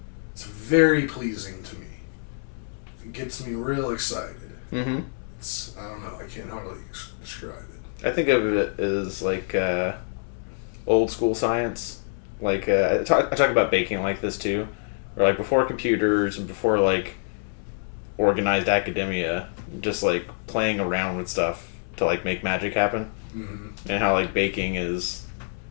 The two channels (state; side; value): silent; right; digital silence